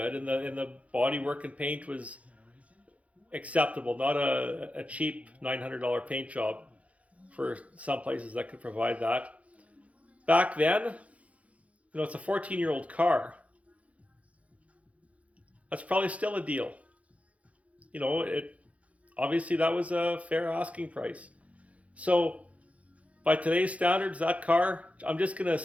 and the body work and paint was acceptable, not a cheap $900 paint job for some places that could provide that. Back then, you know, it's a 14-year-old car. That's probably still a deal. You know, obviously that was a fair asking price. So by today's standards, that car, I'm just going to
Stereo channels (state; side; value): late; left; 0.065 ms